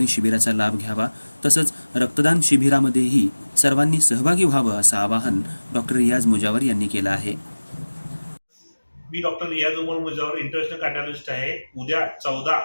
शिबिराचा लाभ घ्यावा, तसंच रक्तदान शिबिरामध्येही सर्वांनी सहभागी व्हावं असं आवाहन डॉक्टर रियाज मुजावर यांनी केलं आहे। मी डॉक्टर रियाज मुजावर इंटरनॅशनल कार्डिओलॉजिस्ट आहे। उद्या 14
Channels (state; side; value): inverted; both; correlation -1.00